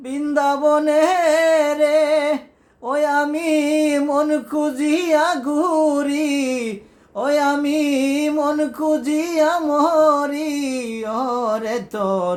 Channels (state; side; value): identical; both; correlation 1.00